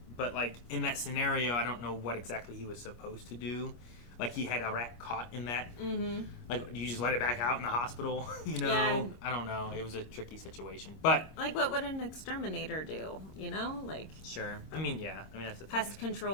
but like in that scenario, I don't know what exactly he was supposed to do. Like he had a rat caught in that. Mm-hmm. Like, do you just let it back out in the hospital? You know, yeah. I don't know. It was a tricky situation, but like, what would an exterminator do? You know, like sure. I mean, yeah. I mean, that's a pest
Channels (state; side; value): late; right; 25 ms